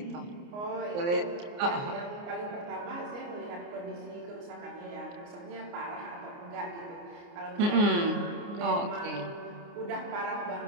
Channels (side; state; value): left; late; 29 ms